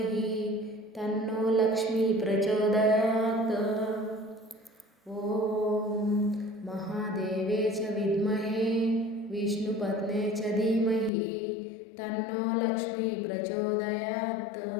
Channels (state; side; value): drops out; right; at 11.1 s